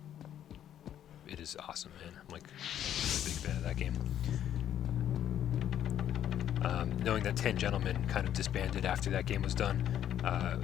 awesome, man. I'm like a big fan of that game. Knowing that 10 Gentlemen kind of disbanded after that game was done, it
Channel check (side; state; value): right; quieter; 10.5 dB